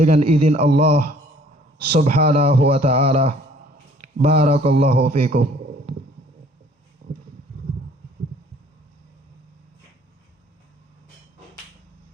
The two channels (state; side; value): normal; both; correlation 0.56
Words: izin Allah subhanahu wa ta'ala. Barakallahu fikum.